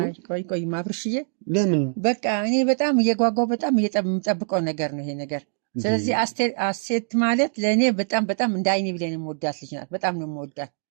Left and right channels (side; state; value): left; silent; digital silence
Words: አይቆይም አብርሽዬ። ለምን? በቃ እኔ በጣም እየጓጓው በጣም የምጠብቀው ነገር ነው ይሄ ነገር። ስለዚህ ሀሴት ማለት ለእኔ በጣም በጣም እንደ አይኔ ብሌን የምወዳት ልጅ ናት። በጣም ነው የምወዳት